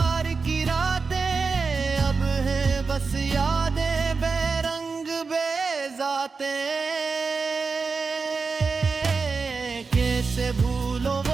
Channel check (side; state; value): left; quieter; 4.7 dB